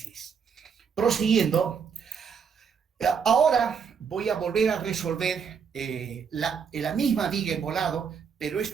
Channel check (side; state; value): left; quieter; 6.5 dB